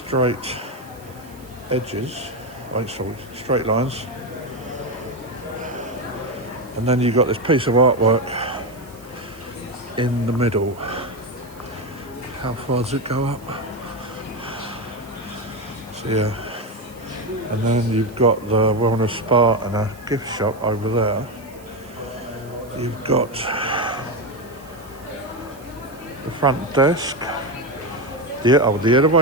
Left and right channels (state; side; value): noise; right; hiss, 24 dB below the sound